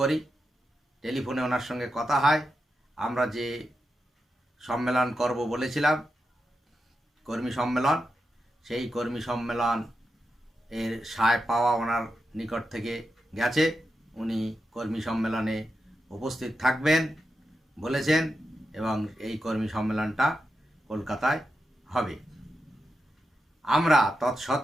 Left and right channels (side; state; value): both; normal; correlation 0.88